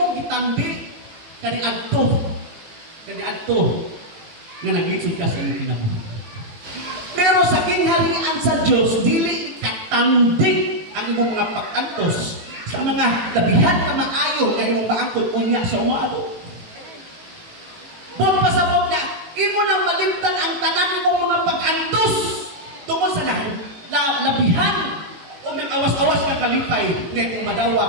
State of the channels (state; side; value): late; left; 18 ms